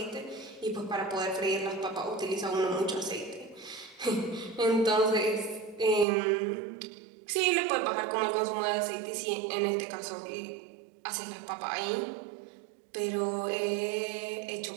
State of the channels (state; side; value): drops out; left; at 6.1 s